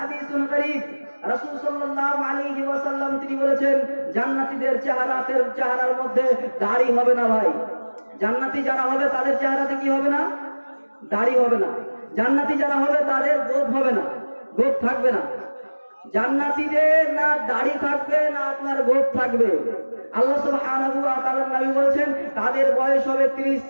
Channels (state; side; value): inverted; both; correlation -1.00